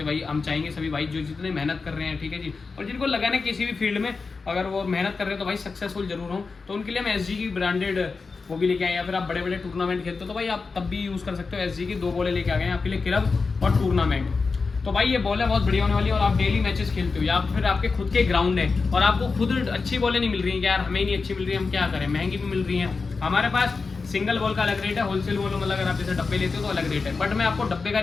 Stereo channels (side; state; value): right; quieter; 4.4 dB